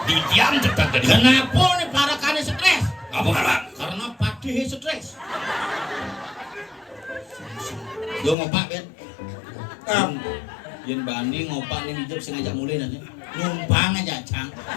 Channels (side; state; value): right; drops out; at 8.3 s